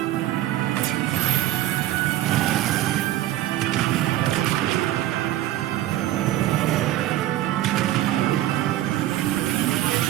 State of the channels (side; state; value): left; quieter; 14.2 dB